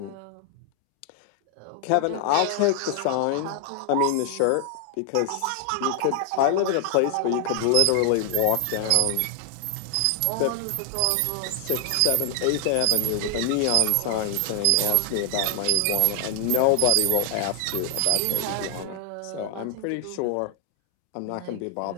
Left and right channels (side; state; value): both; different; correlation 0.00